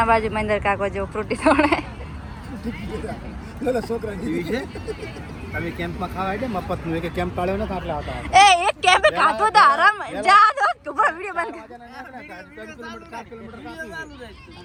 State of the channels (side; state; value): both; identical; correlation 1.00